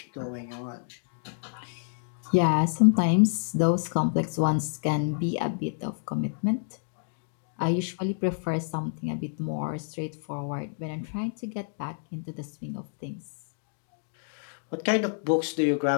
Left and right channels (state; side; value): silent; right; digital silence